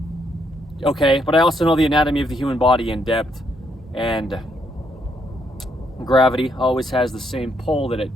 Okay, but I also know the anatomy of the human body in depth, and gravity always has the same pull that it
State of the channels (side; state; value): both; normal; correlation 0.74